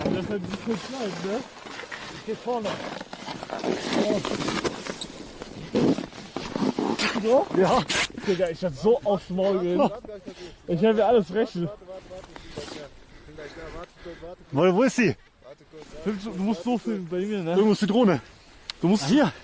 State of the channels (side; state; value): both; identical; correlation 1.00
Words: Aber das ist halt nicht so klein, ne? Ich geh vorne. So? Ja. Digga, ich hab so aufs Maul gehen. Ich hab mir alles rechnen. Wo ist sie? Du musst so filmen bei mir, ne? Irgendwo ist die Drohne. Du musst Hier.